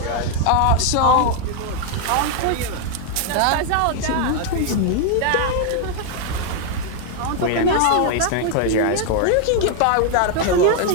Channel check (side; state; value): both; different; correlation 0.00